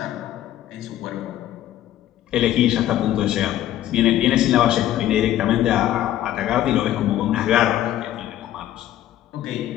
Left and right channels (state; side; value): quieter; right; 12.8 dB